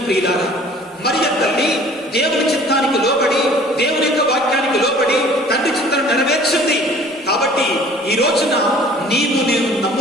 ప్రియులారా, మరియ తల్లి దేవుని చిత్తానికి లోబడి, దేవుని యొక్క వాక్యానికి లోబడి తండ్రి చిత్తాన్ని నెరవేర్చింది. కాబట్టి ఈ రోజున నీవు నేను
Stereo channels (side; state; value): both; normal; correlation 0.50